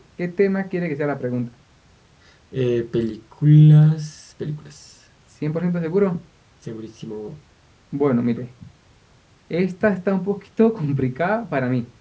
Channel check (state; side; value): identical; both; correlation 1.00